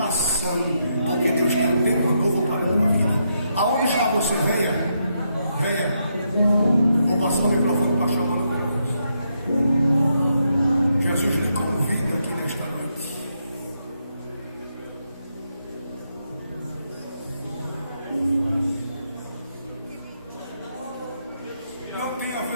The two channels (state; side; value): inverted; both; correlation -0.80